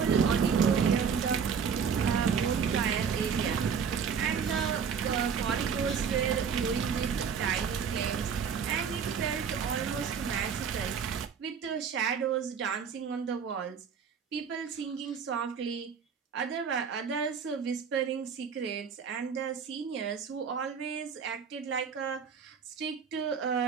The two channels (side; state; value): left; quieter; 6.6 dB